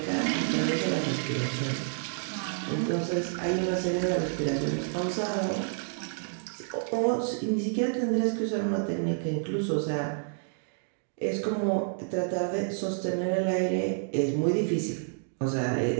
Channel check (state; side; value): silent; left; digital silence